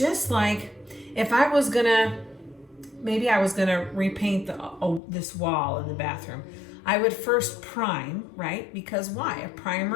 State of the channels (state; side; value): drops out; right; at 5.0 s